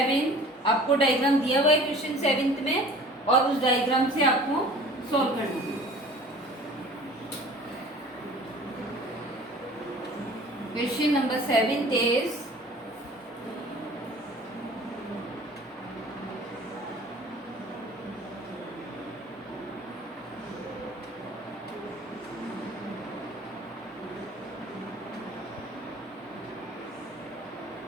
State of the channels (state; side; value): normal; both; correlation 0.46